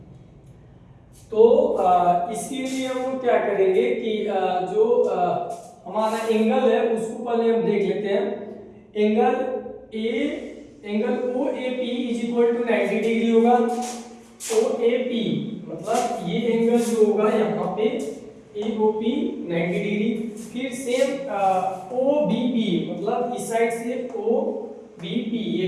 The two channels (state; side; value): identical; both; correlation 1.00